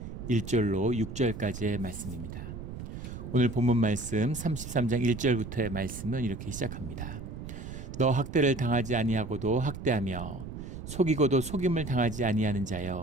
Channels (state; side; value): noise; right; rumble, 9 dB below the sound